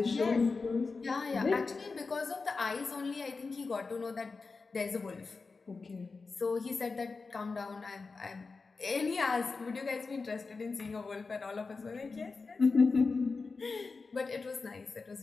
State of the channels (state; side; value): quieter; right; 4.3 dB